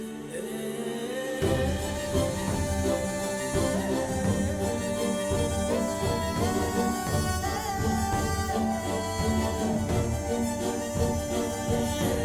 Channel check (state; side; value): identical; both; correlation 1.00